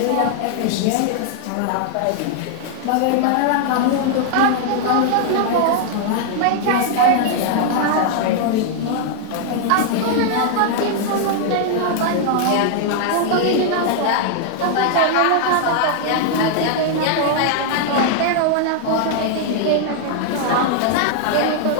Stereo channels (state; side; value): different; both; correlation 0.00